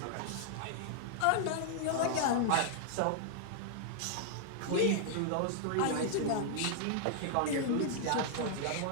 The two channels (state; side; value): different; both; correlation -0.01